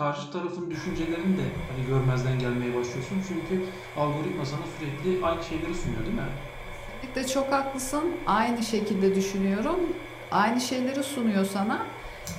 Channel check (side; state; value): both; identical; correlation 1.00